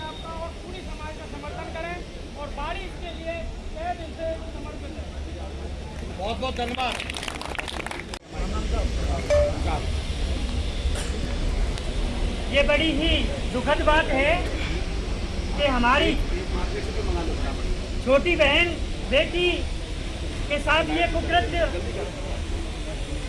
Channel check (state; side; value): identical; both; correlation 1.00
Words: का और पूरी समाज का समर्थन करें और बारिश के लिए तहे दिल से समर्पित है। बहुत बहुत धन्यवाद। ये बड़ी ही दुखद बात है कि हमारी छोटी बहन बेटी के साथ ये कुकृत्य